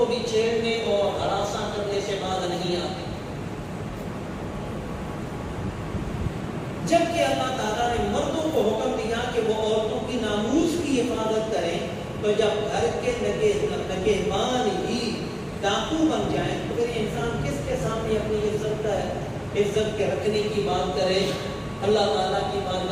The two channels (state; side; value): identical; both; correlation 1.00